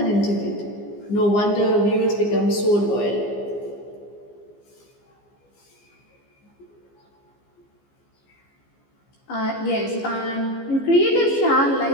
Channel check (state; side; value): late; right; 15 ms